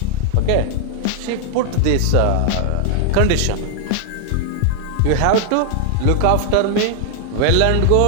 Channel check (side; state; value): both; different; correlation 0.00